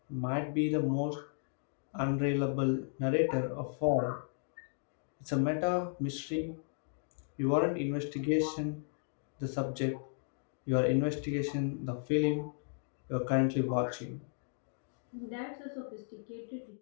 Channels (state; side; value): silent; right; digital silence